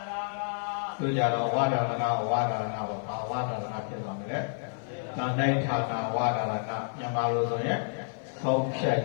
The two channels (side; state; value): right; silent; 58 dB below the other